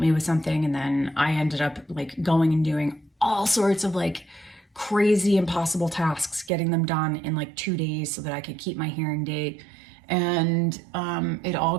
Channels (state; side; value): drops out; left; at 6.5 s